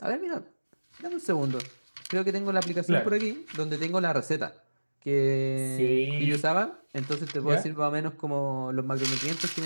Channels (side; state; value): both; inverted; correlation -1.00